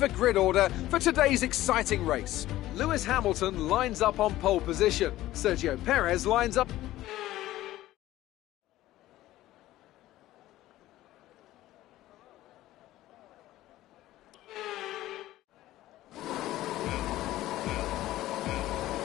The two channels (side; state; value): right; quieter; 15.4 dB